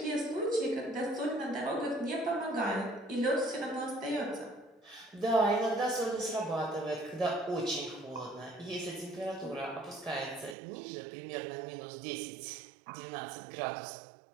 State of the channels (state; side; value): drops out; left; at 10.6 s